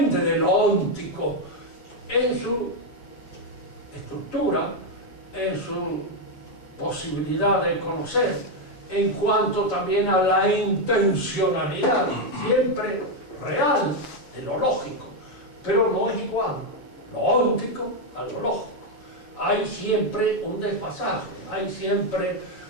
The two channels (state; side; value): late; right; 7.1 ms